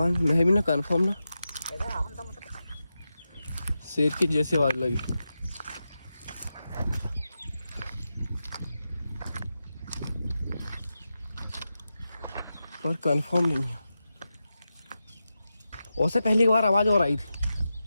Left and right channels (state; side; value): inverted; both; correlation -0.90